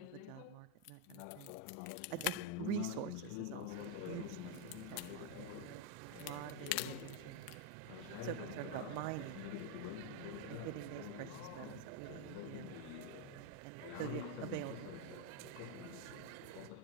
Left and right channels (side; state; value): both; different; correlation 0.01